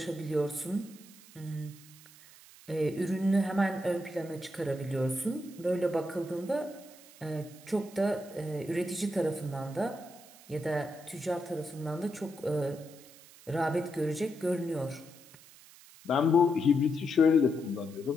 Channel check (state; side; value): noise; right; hiss, 21 dB below the sound